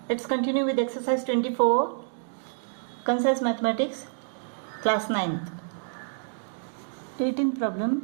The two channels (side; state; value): left; silent; digital silence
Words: Let's continue with exercise 24, Concise Mathematics, class 9th. 18th